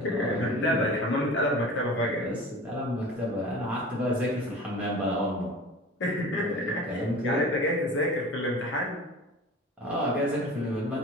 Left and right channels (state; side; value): normal; both; correlation 0.38